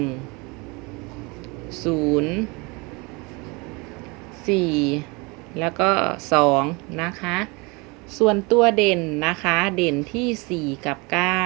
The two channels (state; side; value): quieter; left; 27.4 dB